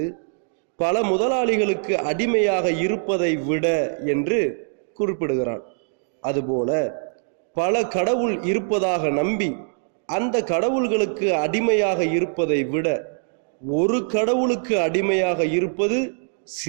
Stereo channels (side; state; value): left; silent; digital silence